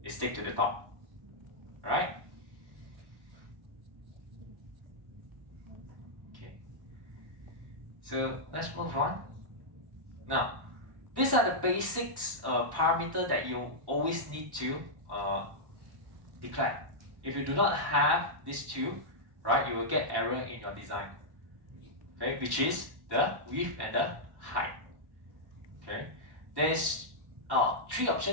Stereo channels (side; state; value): left; late; 1.1 ms